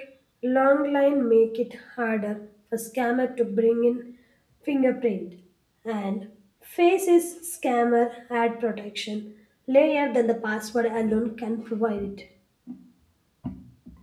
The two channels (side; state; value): both; identical; correlation 1.00